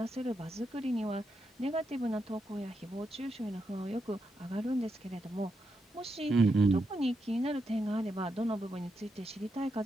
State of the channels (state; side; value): normal; both; correlation 0.84